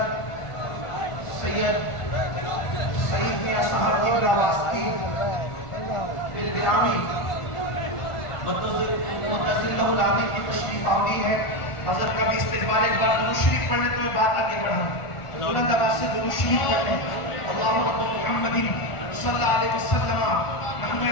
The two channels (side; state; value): right; late; 1.4 ms